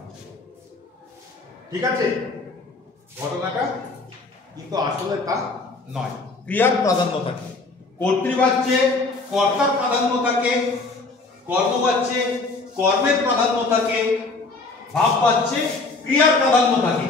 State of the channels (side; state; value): right; quieter; 3.6 dB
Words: ঠিক আছে, ঘটনাটা কিন্তু আসলে তা নয়। ক্রিয়ার প্রাধান্য থাকে, কর্তৃবাচ্যে কর্তার প্রাধান্য থাকে, কর্মবাচ্যে কর্মের প্রাধান্য থাকে, ভাববাচ্যে ক্রিয়ার প্রাধান্য থাকে।